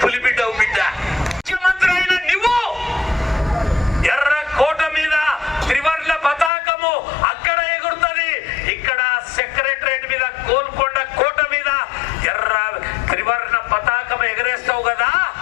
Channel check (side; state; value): right; drops out; at 6.5 s